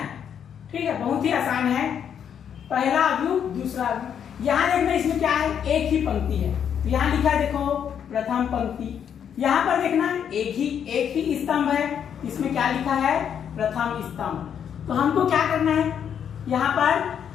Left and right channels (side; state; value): right; quieter; 8.4 dB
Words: ठीक है, बहुत ही आसान है। पहला अवयव, दूसरा अवयव। यहाँ देखना, इसमें क्या है, एक ही पंक्ति है। तो यहाँ लिखा है, देखो प्रथम पंक्ति। यहाँ पर देखना एक ही स्तंभ है, इसमें क्या लिखा है, प्रथम स्तंभ। तो हमको क्या करना है, यहाँ पर